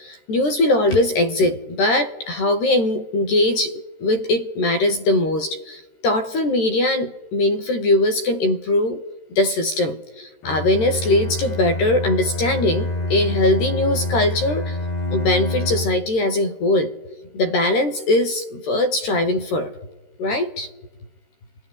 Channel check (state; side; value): late; right; 13 ms